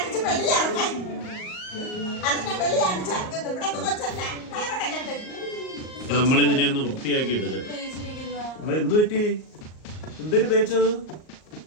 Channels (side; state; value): right; late; 38 ms